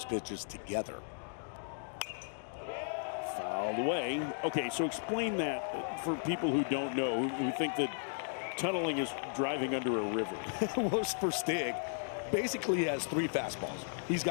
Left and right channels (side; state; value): right; silent; digital silence